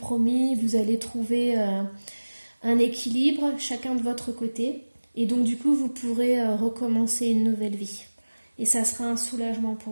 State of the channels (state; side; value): inverted; both; correlation -1.00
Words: vous allez trouver un équilibre, chacun de votre côté, et donc du coup, vous pourrez recommencer une nouvelle vie. Et ça sera un soulagement